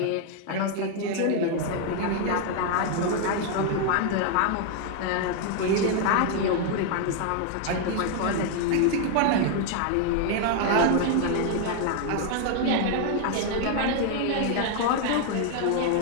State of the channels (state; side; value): different; both; correlation 0.00